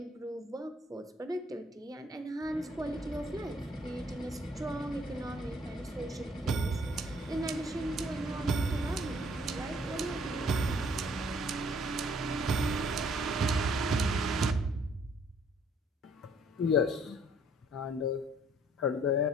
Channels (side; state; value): both; normal; correlation 0.62